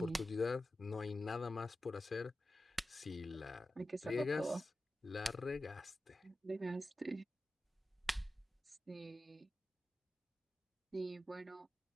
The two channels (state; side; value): normal; both; correlation 0.93